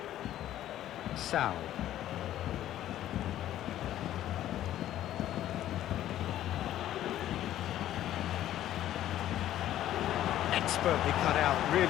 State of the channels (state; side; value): quieter; right; 12.6 dB